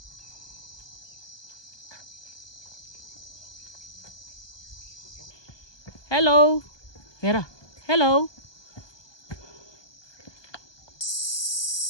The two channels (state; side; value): late; right; 1.2 ms